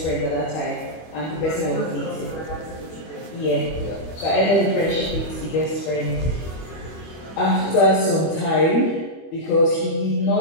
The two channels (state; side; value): late; right; 25 ms